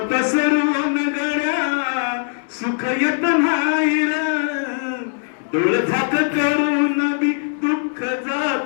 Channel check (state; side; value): silent; right; 66 dB below the other